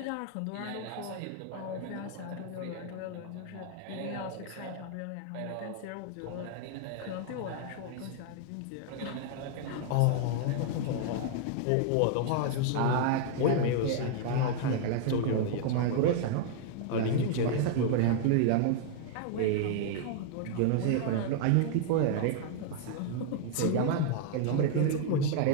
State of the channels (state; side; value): different; both; correlation -0.01